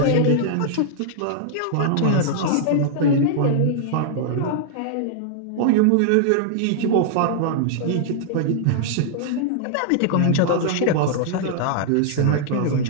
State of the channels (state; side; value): different; both; correlation -0.01